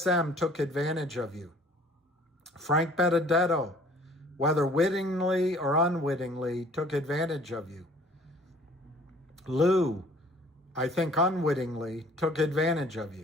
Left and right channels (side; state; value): both; normal; correlation 0.54